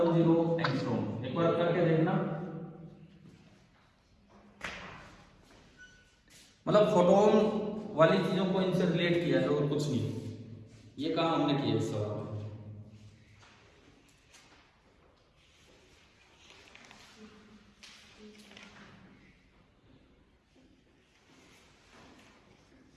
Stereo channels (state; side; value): identical; both; correlation 1.00